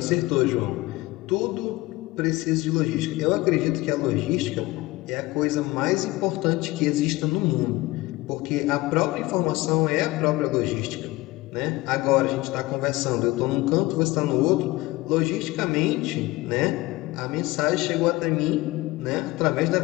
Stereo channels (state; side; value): quieter; right; 19.9 dB